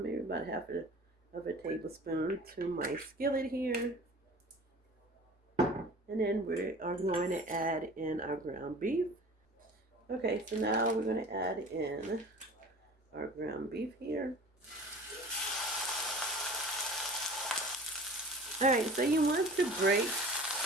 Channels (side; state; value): both; normal; correlation 0.41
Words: about half of a tablespoon to my skillet here. And then we are going to add in our ground beef. Okay, so now we're going to add in our ground beef here. All right, so you want to break